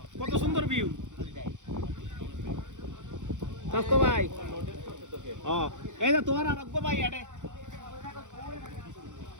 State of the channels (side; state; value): left; late; 0.85 ms